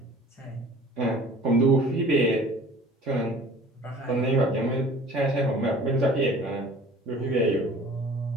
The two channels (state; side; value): normal; both; correlation 0.47